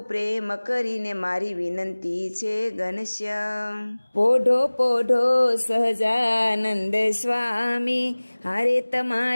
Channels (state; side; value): inverted; both; correlation -1.00